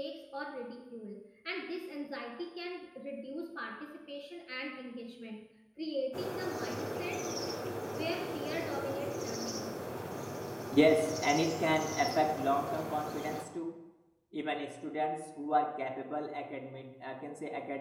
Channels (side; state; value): both; identical; correlation 1.00